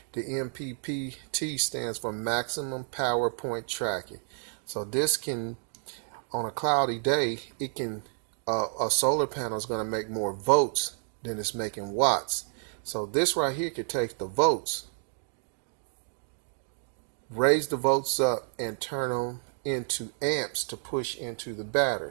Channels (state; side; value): silent; left; 58 dB below the other